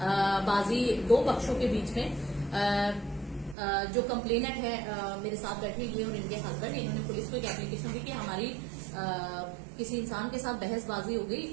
बाजी दो पक्षों के बीच में जो कंप्लेनेंट है मेरे साथ बैठे ये और इनके हस्बैंड, इन्होंने पुलिस को एक एप्लीकेशन दी कि हमारी किसी इंसान के साथ बहसबाजी हो गई।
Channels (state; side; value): drops out; left; at 3.6 s